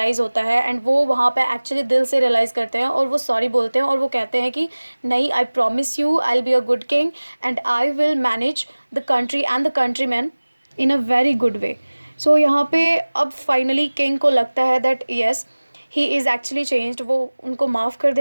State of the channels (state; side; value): inverted; both; correlation -1.00